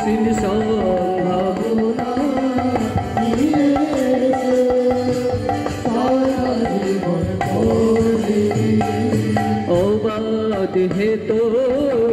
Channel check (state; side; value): identical; both; correlation 1.00